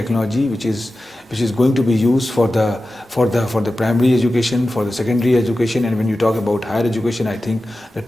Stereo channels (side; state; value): both; normal; correlation 0.94